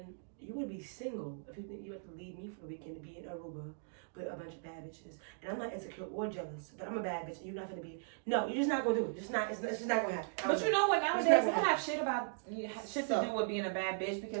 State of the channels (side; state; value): left; silent; digital silence